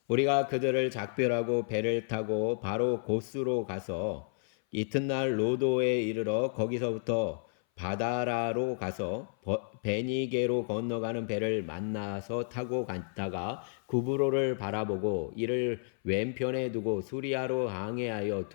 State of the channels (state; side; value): silent; right; 57 dB below the other